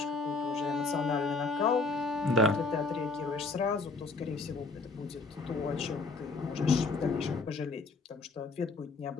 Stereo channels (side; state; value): right; quieter; 3.7 dB